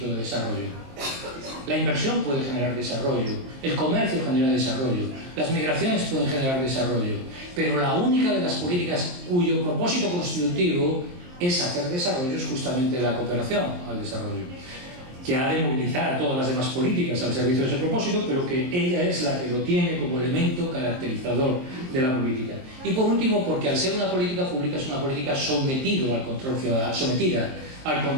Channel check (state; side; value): late; left; 23 ms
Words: de desarrollo. La inversión puede generar desarrollo, el comercio genera desarrollo, las migraciones pueden generar desarrollo, pero la única de las políticas cuyo propósito constitutivo es hacer desarrollo es justamente la cooperación al desarrollo, que ha de movilizar a todas las demás políticas al servicio de ese propósito, pero que ella es la que lo tiene como elemento caracterizador de la política. Y por último, porque al ser una política pública es una política sometida al